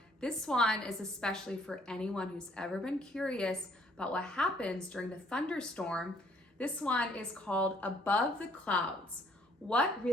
This one is especially for anyone who's ever been curious about what happens during the thunderstorm. This one is called Above the Clouds. What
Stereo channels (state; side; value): normal; both; correlation 0.64